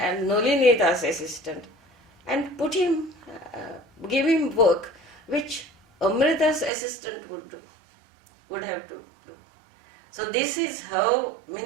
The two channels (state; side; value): drops out; left; at 6.7 s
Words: Nolinida's assistant and put him, give him work which Amrita's assistant would have to do. So this is how